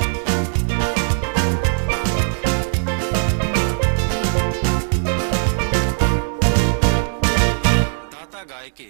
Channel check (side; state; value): left; silent; digital silence